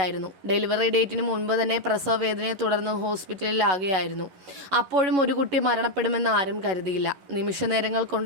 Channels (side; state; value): left; late; 11 ms